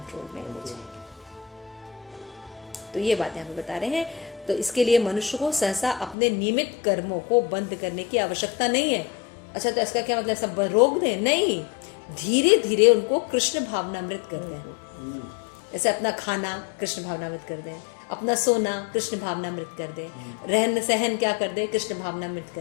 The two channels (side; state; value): right; drops out; at 6.2 s